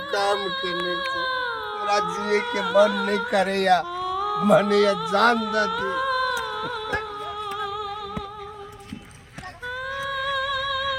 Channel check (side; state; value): both; identical; correlation 1.00